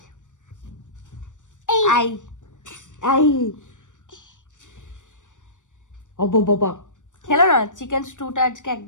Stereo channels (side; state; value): right; late; 0.86 ms